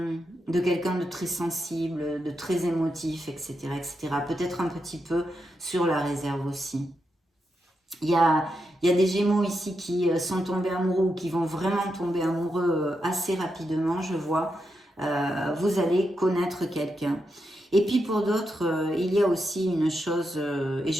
quelqu'un de très sensible, de très émotif, etc. etc. Peut-être un petit peu sur la réserve aussi. Il y a des Gémeaux ici qui sont tombés amoureux ou qui vont vraiment tomber amoureux assez rapidement, je vois. Vous allez connaître quelqu'un. Et puis pour d'autres, il y a aussi une chose, et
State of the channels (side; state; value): both; normal; correlation 0.85